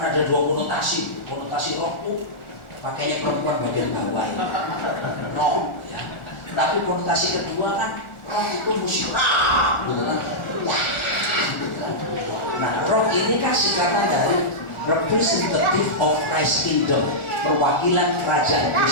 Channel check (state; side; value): late; right; 1.4 ms